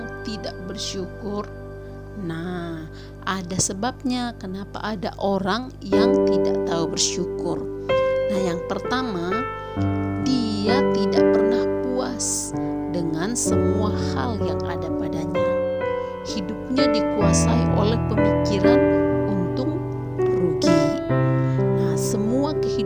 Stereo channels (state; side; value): identical; both; correlation 1.00